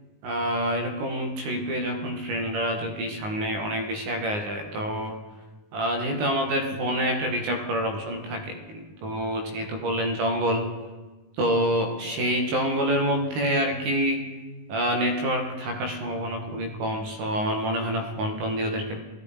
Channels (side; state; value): left; late; 19 ms